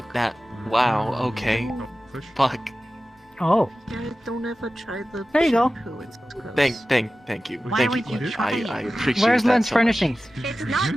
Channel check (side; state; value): both; normal; correlation 0.95